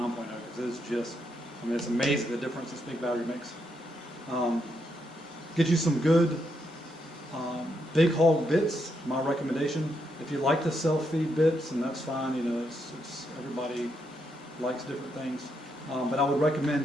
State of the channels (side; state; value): both; normal; correlation 0.79